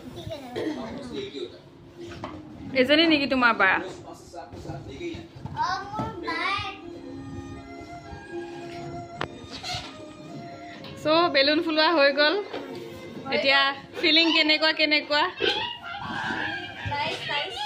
ঠিক আছে एक ही होता है এজনী নেকি তোমাৰ বা प्रोसेस आपके साथ ले गई है মোৰ বাই সো বেলুন ফুলোৱা হৈ গ'ল এতিয়া ফিলিং কেনেকুৱা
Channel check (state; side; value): identical; both; correlation 1.00